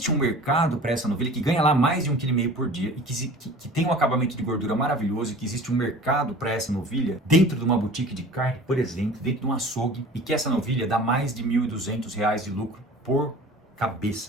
um mercado para essa novilha que ganha lá mais de 1,5 kg por dia e que tem um acabamento de gordura maravilhoso, e que existe um mercado para essa novilha dentro de uma boutique de carne, por exemplo, dentro de um açougue, e que essa novilha dá mais de R$ 1.200 de lucro por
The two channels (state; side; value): normal; both; correlation 0.43